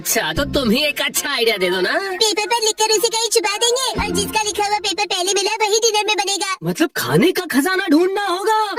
तो तुम ही एक अच्छा आइडिया दे दो ना। पेपर पर लिखकर उसे कहीं छुपा देंगे और जिसका लिखा हुआ पेपर पहले मिला वही डिनर में बनेगा। मतलब खाने का खजाना ढूंढना होगा।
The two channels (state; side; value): identical; both; correlation 1.00